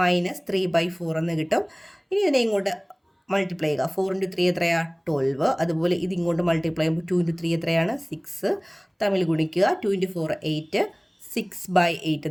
എന്ന് കിട്ടും. ഇനി ഇതിനെ ഇങ്ങോട്ട് മൾട്ടിപ്ലൈ ചെയ്യുക. 4 × 3 എത്രയാണ്? 12. അതുപോലെ ഇത് ഇങ്ങോട്ട് മൾട്ടിപ്ലൈ ചെയ്യുമ്പോൾ 2 × 3 എത്രയാണ്? 6. തമ്മിൽ ഗുണിക്കുക. 2 × 4 8. 6/8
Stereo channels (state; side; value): identical; both; correlation 1.00